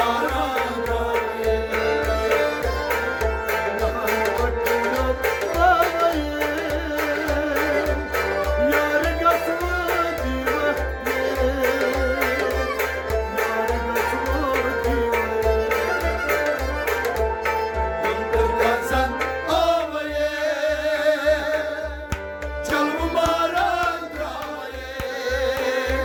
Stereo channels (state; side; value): identical; both; correlation 1.00